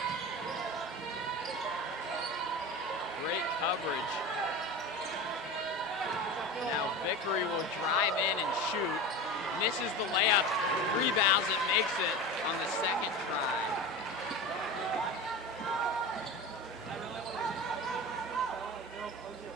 Great coverage. Now Vickery will drive in and shoot. Misses the layup, rebounds it, makes it on the second try.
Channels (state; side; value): normal; both; correlation 0.28